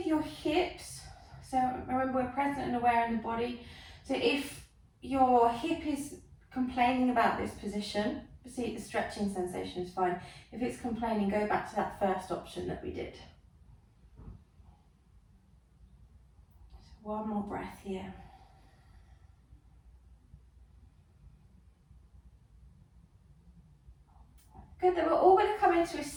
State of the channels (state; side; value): identical; both; correlation 1.00